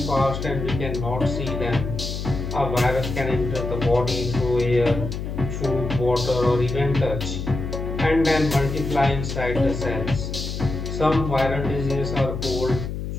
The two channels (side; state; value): left; noise; hum, 5 dB below the sound